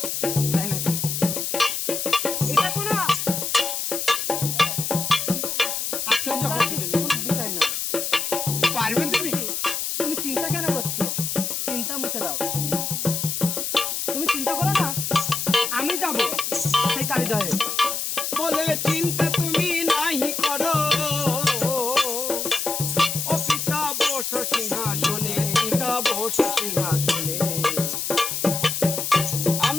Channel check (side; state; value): left; noise; hiss, 2 dB below the sound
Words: পারবে তুমি? তুমি চিন্তা কেন করছো? চিন্তা মুছে দাও। তুমি চিন্তা করো না, আমি যাবো সেই কালিদয়ে। বলে চিন্তা তুমি নাহি করো, ও পিতা বস সিংহাসনে, পিতা বস সিংহাসনে।